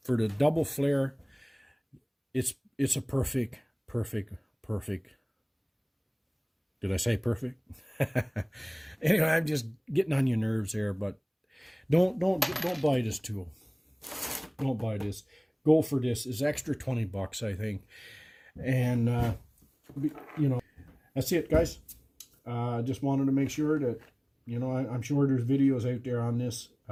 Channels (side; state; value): both; identical; correlation 1.00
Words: for the double flare, it's a perfect. Did I say perfect? Anyway, I'm just getting on your nerves here, but don't buy this tool. Don't buy this. Go for this. It's extra $20, I think. And you know, that's it, guys. Just wanted to make sure that, you know, I'm sure there's videos out there on this.